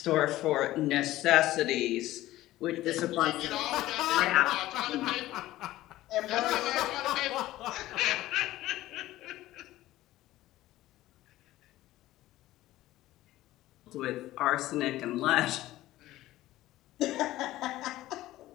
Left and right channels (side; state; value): right; quieter; 15.8 dB